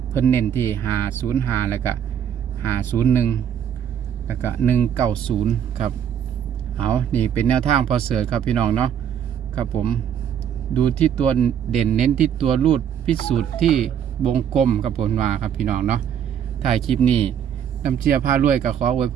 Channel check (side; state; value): left; quieter; 8.9 dB